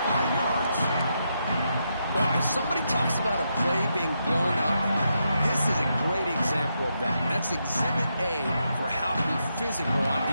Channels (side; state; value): both; inverted; correlation -0.82